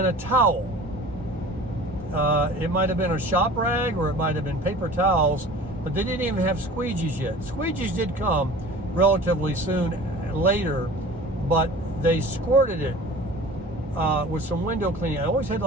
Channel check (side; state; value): both; normal; correlation 0.42